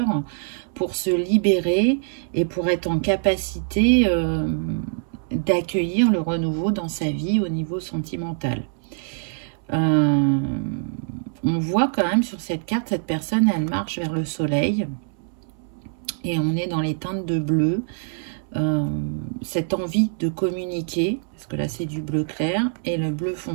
pour se libérer et pour être en capacité d'accueillir le renouveau dans sa vie au niveau sentimental. On voit quand même sur cette carte, cette personne, elle marche vers le soleil et on est dans les teintes de bleu. Cette envie de communiquer, parce que là c'est du bleu clair, et le bleu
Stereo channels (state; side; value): silent; left; 63 dB below the other